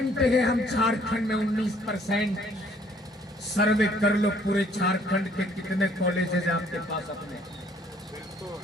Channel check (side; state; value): both; normal; correlation 0.62